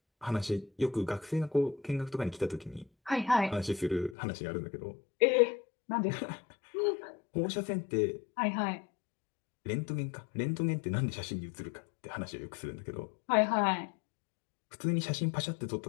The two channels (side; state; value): right; drops out; at 4.2 s